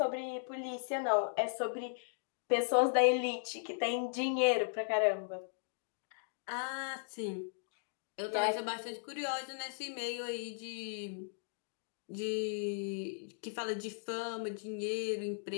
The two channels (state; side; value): silent; right; digital silence